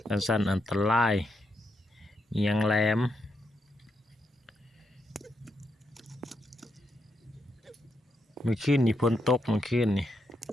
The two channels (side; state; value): both; normal; correlation 0.81